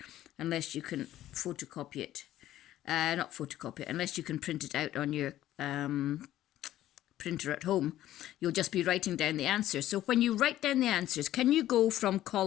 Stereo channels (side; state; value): right; quieter; 13.5 dB